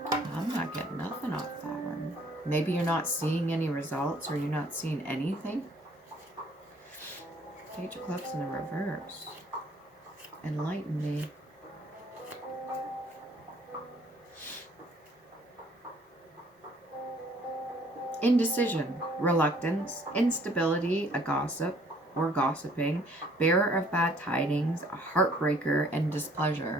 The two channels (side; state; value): both; normal; correlation 0.59